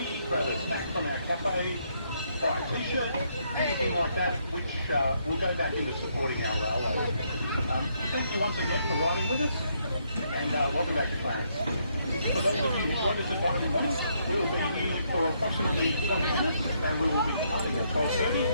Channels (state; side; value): inverted; both; correlation -0.74